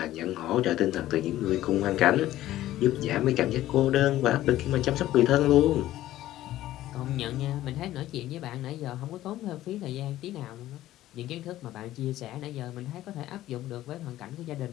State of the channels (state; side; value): quieter; right; 14.4 dB